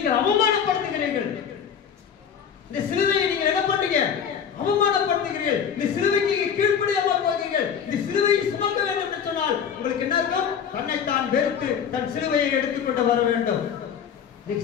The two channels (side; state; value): right; quieter; 7.7 dB